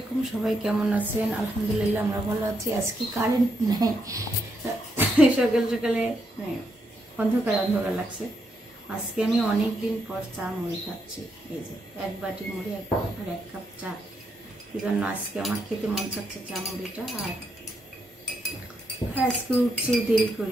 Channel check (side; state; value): both; normal; correlation 0.79